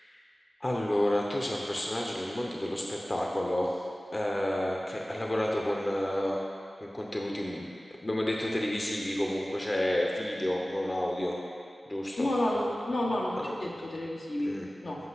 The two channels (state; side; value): normal; both; correlation 0.97